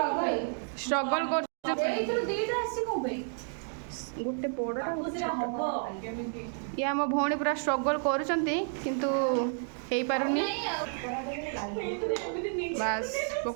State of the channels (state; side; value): silent; left; 57 dB below the other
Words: स्ट्रगल कर गोटे बड़ा ये आम भौणी पूरा स्ट्रगल करूँ बस